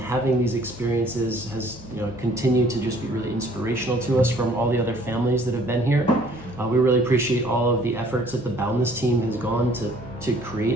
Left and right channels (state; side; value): normal; both; correlation 0.57